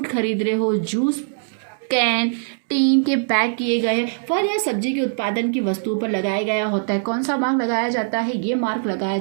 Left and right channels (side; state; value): left; silent; digital silence